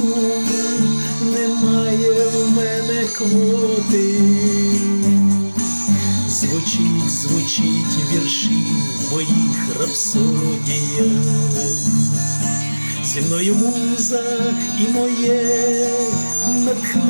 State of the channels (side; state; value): both; inverted; correlation -1.00